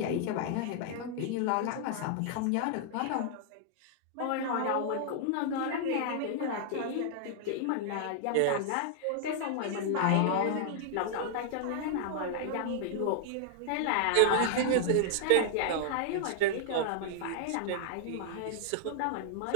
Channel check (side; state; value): both; different; correlation -0.01